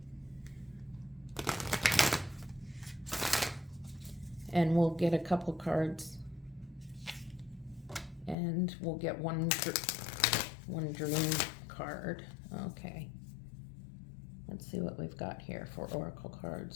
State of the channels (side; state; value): right; drops out; at 8.3 s